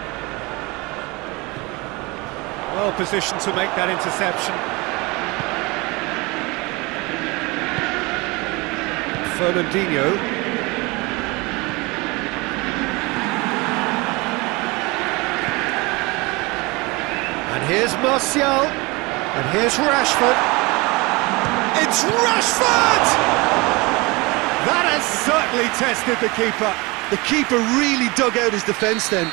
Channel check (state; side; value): quieter; left; 24.9 dB